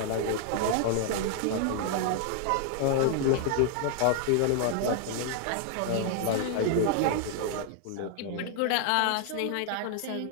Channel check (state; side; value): different; both; correlation 0.00